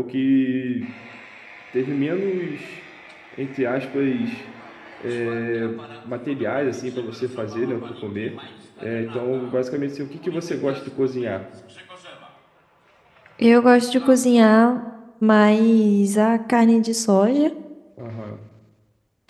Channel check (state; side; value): identical; both; correlation 1.00